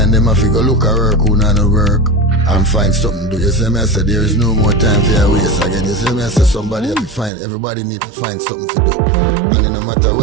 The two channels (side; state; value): left; drops out; at 7.3 s